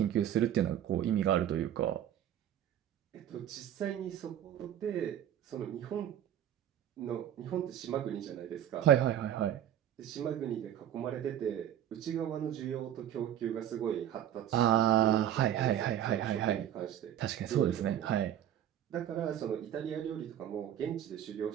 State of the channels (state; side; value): quieter; left; 10.8 dB